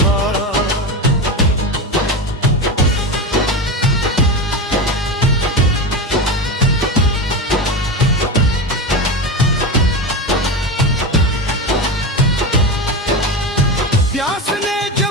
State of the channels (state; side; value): normal; both; correlation 0.20